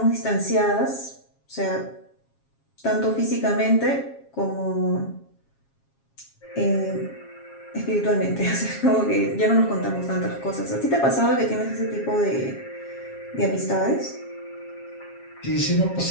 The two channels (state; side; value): late; right; 7.4 ms